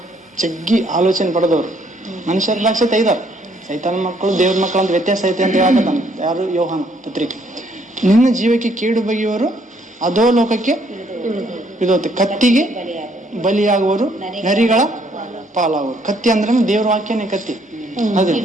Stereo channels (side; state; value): both; normal; correlation 0.67